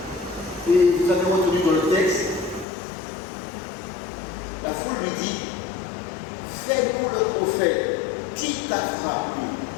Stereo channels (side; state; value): right; drops out; at 2.7 s